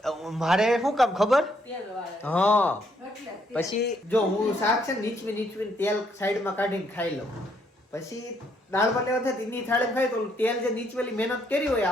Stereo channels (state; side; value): normal; both; correlation 0.71